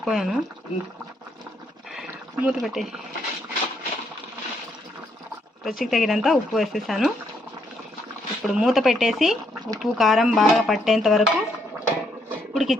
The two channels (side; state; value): both; normal; correlation 0.74